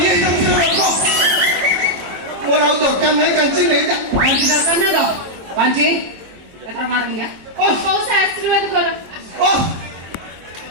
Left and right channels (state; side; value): late; left; 23 ms